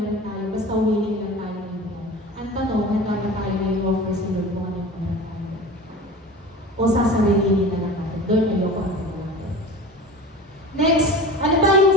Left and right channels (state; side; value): normal; both; correlation 0.35